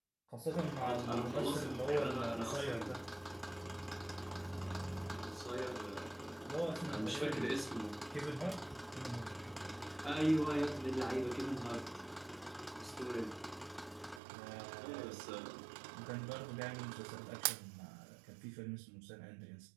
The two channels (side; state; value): left; drops out; at 14.2 s